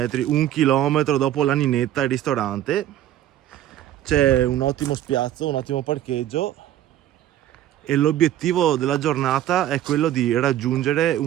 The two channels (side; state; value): left; quieter; 12.3 dB